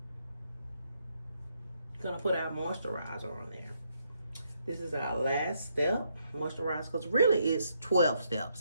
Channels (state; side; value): inverted; both; correlation -0.77